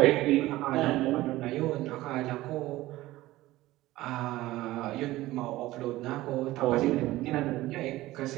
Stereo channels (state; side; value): quieter; left; 17.1 dB